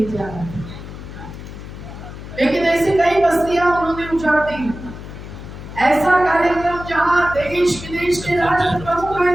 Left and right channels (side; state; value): left; noise; hum, 12 dB below the sound